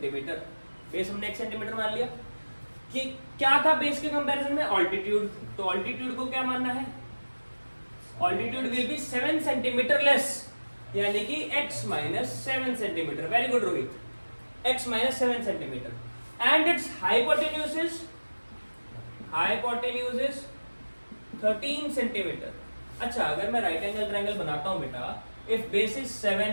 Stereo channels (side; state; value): both; inverted; correlation -1.00